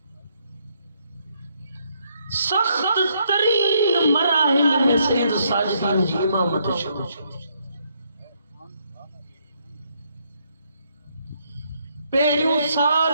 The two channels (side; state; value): both; inverted; correlation -0.73